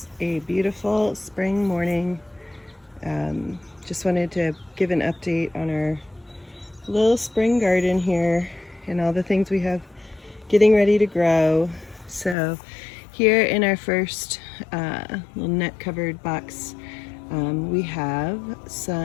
a beautiful spring morning. Just wanted to give an update on our little spring garden here and all the things we have getting ready to grow. So here in our first little net covered box, we have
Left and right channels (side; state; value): right; drops out; at 12.4 s